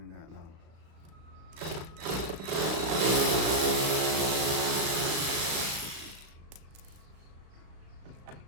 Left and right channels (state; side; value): late; left; 36 ms